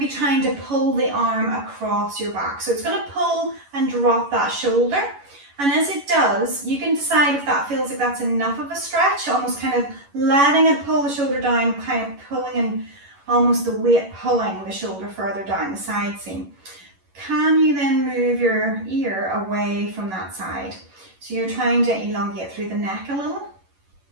be trying to pull the arm across your back. So it's going to pull and drop that shoulder. And as it does, you can decide if that feels like that's enough of a stretch, almost kind of letting it pull the shoulder down, kind of pulling and almost the weight pulling the shoulder further down the side seam. Can you then move your ear away from that side? So you're trying to elongate through the neck a little.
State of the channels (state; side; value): late; left; 11 ms